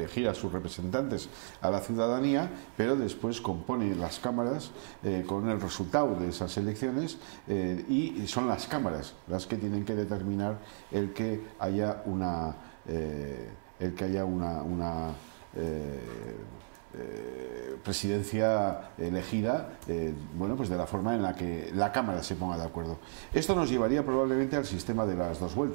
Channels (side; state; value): left; silent; 55 dB below the other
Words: a sus representantes a la ciudadanía, pero después compone las cámaras con el resultado de esas elecciones y son las cámaras las que tienen que determinar el que haya una presidencia elegida, bueno, pues de la forma en la que la Cámara se ponga de acuerdo. Esto nos llevaría probablemente al sistema de las dos